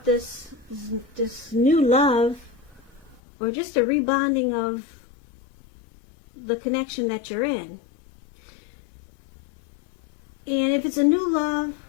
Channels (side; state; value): right; drops out; at 3.2 s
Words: this new love, or just a rebonding of the connection that you're in. And if it's a new love,